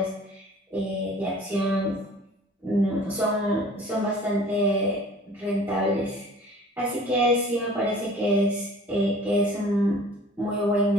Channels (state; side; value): normal; both; correlation 0.47